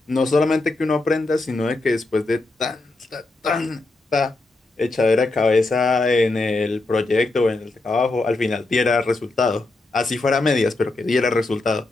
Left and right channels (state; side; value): quieter; right; 3.0 dB